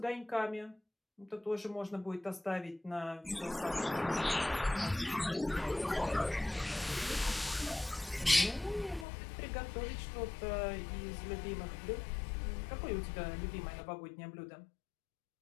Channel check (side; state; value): right; drops out; at 9.1 s